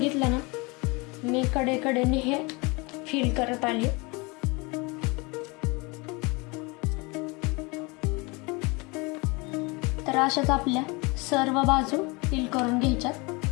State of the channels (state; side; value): quieter; right; 27.2 dB